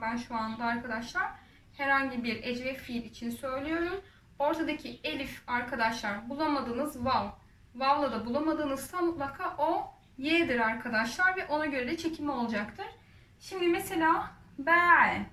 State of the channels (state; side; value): identical; both; correlation 1.00